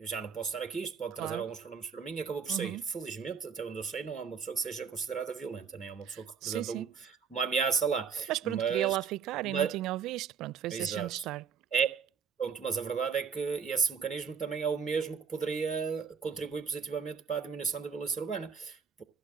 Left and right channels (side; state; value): left; quieter; 6.4 dB